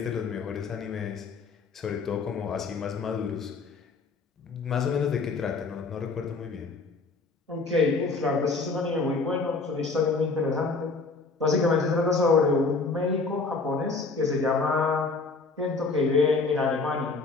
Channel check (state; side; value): quieter; right; 4.1 dB